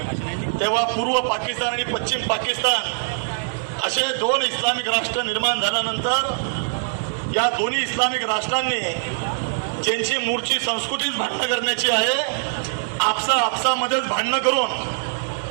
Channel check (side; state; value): left; silent; digital silence